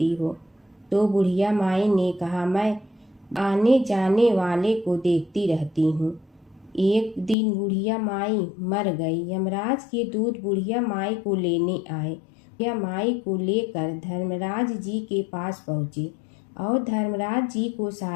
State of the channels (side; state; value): right; drops out; at 7.4 s